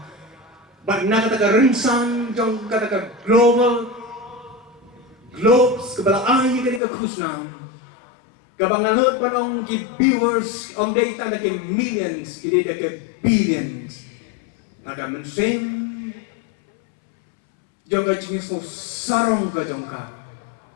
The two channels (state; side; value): drops out; right; at 6.8 s